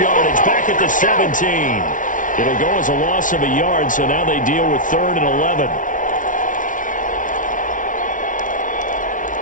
back at the 17. It'll go as a loss of a yard, so now they deal with 3rd and 11.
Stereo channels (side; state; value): right; late; 0.38 ms